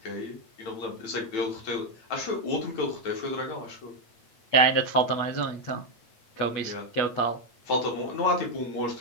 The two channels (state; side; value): late; right; 8.2 ms